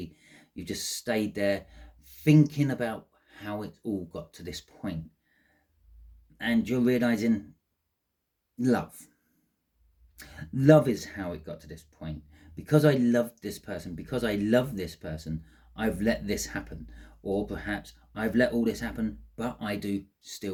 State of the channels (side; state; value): both; identical; correlation 1.00